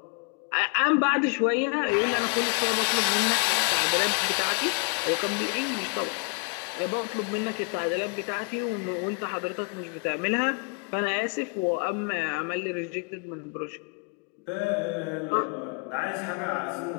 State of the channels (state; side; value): quieter; right; 35.5 dB